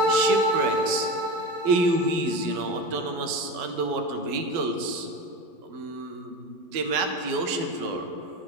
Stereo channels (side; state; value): left; late; 11 ms